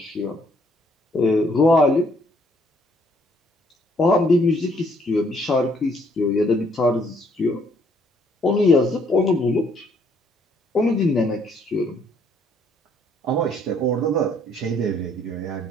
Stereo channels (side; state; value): both; normal; correlation 0.66